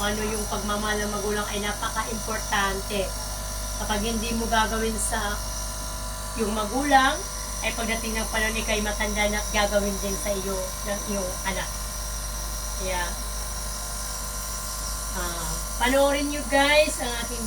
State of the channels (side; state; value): both; identical; correlation 1.00